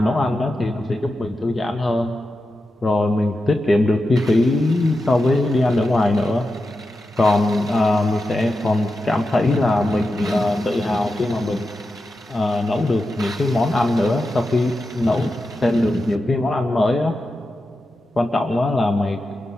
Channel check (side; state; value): both; normal; correlation 0.90